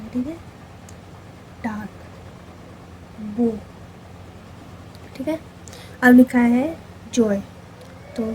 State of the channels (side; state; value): both; identical; correlation 1.00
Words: ठीक है, डार्क बो, ठीक है। अब लिखा है जॉय, तो